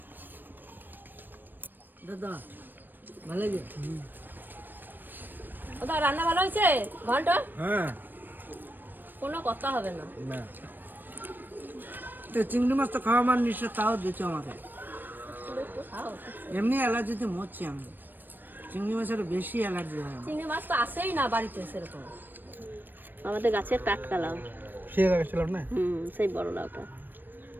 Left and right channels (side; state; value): left; late; 0.093 ms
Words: দাদা ভালো লাগে? ওটা রান্না ভালো হয়েছে ঘন্ট? হ্যাঁ, কোনো কথা হবে না। তো চিংড়ি মাছ তো খাওয়া মানে নিশ্চয়, তাও দিচ্ছ আমাকে। এমনি অ্যালার্জিতে মরছি আমি, চিংড়ি মাছের বেশি অ্যালার্জি হয়। চিংড়ি মাছ তো আসেই না বাড়িতে সেরকম, আমাদের গাছের টাটকা লাউ। সেই লাগাচ্ছিলাম না? সেই বড় লাউটা।